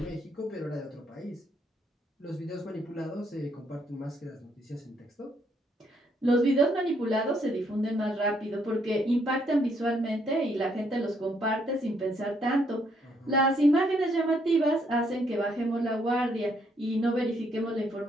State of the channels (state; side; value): normal; both; correlation 0.71